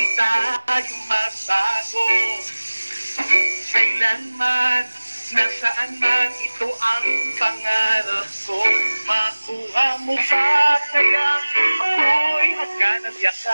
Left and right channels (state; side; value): inverted; both; correlation -1.00